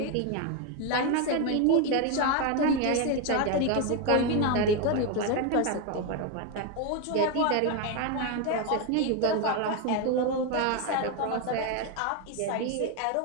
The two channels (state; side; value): different; both; correlation 0.02